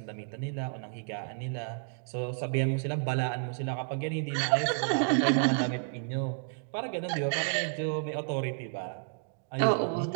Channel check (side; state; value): left; silent; digital silence